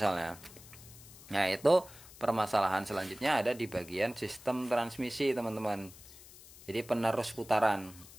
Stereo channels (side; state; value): left; noise; hiss, 19 dB below the sound